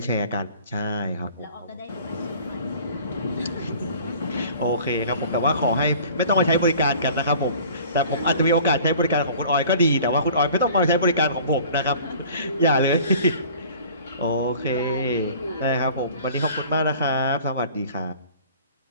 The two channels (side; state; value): both; inverted; correlation -0.47